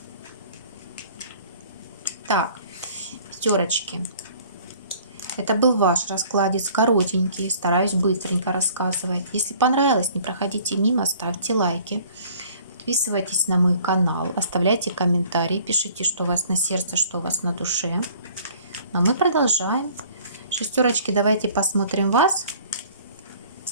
Так, пятерочки. Это был ваш раскладец, коротенький, стараюсь быстренько рассказывать. Если понравилось, не проходите мимо, ставьте лайки, подписывайтесь на мой канал, оставляйте комментарии, пишите, что у вас на сердце, что у вас на душе. А мы продолжаем. Шестерочки, давайте посмотрим вас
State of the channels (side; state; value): both; inverted; correlation -0.53